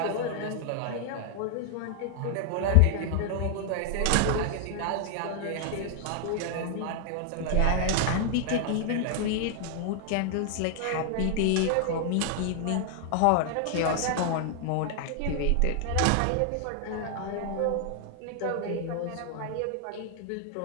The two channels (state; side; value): different; both; correlation 0.00